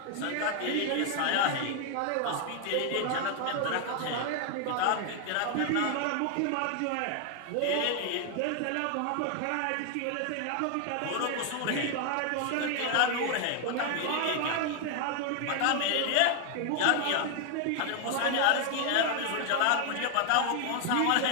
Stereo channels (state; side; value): different; both; correlation 0.00